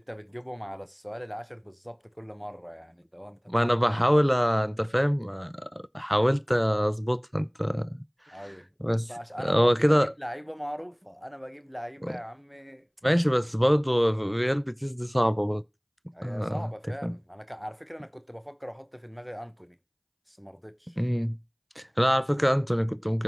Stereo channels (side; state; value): both; identical; correlation 1.00